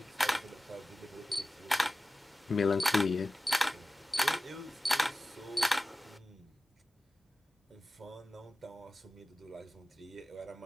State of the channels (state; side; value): normal; both; correlation 0.95